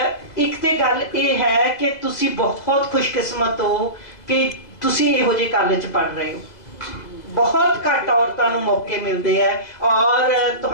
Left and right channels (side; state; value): right; late; 2.0 ms